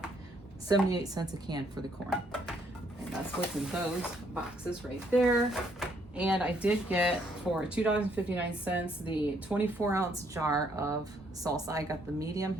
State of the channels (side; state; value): both; normal; correlation 0.69